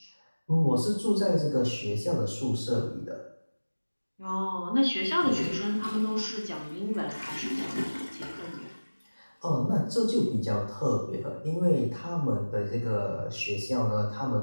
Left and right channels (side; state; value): both; inverted; correlation -1.00